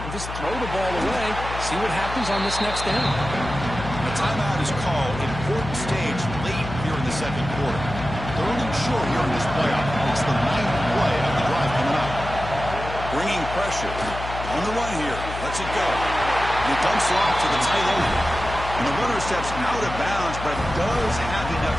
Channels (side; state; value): left; noise; hum, 9 dB below the sound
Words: just throw the ball away. See what happens on this next down. A timeout is called. Important stage late here in the second quarter. Third and short here in this playoff. It's the 9th play of the drive coming up. Bringing pressure. On the run here. Lets it go. And he dumps it off to the tight end. And the runner steps out of bounds, but does have